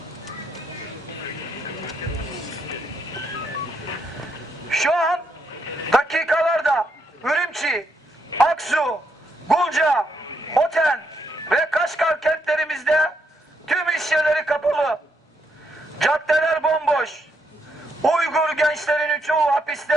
Şu an dakikalarda Ürümçi, Aksu, Gulca, Hoten ve Kaşgar kentlerimizde tüm iş yerleri kapalı. Caddeler bomboş. Uygur gençlerinin çoğu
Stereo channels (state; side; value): normal; both; correlation 0.77